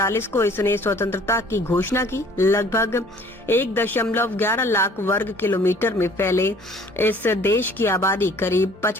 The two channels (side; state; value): both; normal; correlation 0.53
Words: को इसने स्वतंत्रता की घोषणा की। लगभग 1.11 लाख वर्ग किलोमीटर में फैले इस देश की आबादी करीब